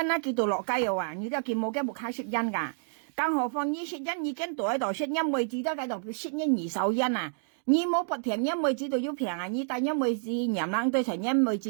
啦，佢到落街又話，你都佢冇嘅木卡識因㗎，更何況你識因已經到喺度識因妹子都喺度識因二手因啊。你冇不平因妹子都要平啊！你但因妹子娘冷對成因妹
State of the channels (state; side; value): silent; left; digital silence